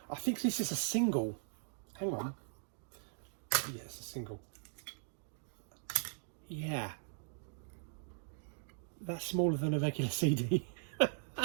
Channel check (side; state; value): left; silent; digital silence